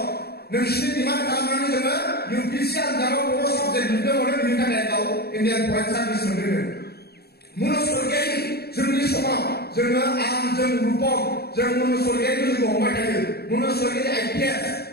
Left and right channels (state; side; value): late; right; 0.46 ms